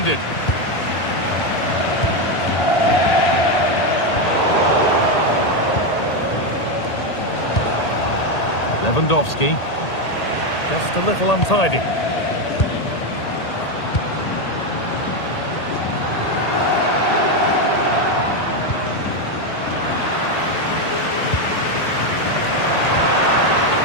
Lewandowski, just a little untidy.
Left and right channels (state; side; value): late; right; 1.8 ms